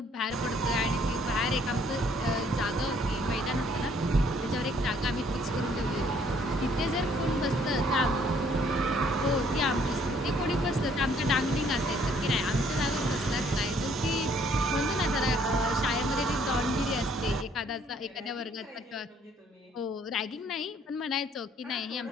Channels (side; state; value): both; normal; correlation 0.63